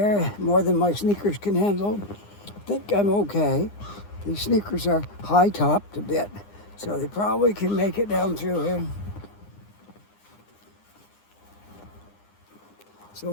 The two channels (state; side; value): late; right; 9.8 ms